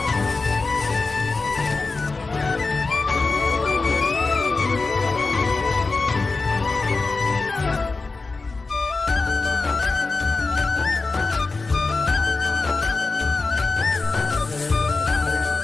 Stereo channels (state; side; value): quieter; right; 3.8 dB